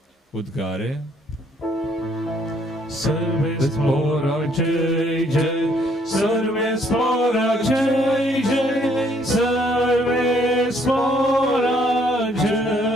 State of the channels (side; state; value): both; normal; correlation 0.66